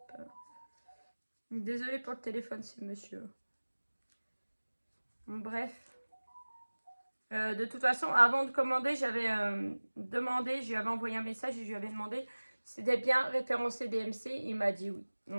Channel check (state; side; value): inverted; both; correlation -1.00